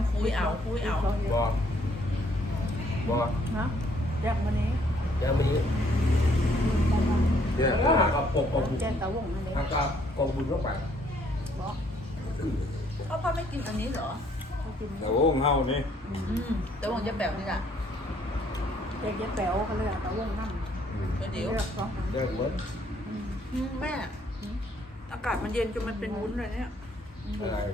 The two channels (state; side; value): normal; both; correlation 0.66